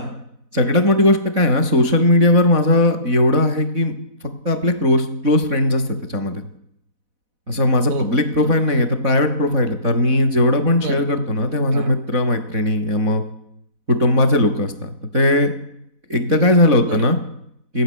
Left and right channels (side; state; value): left; late; 4.1 ms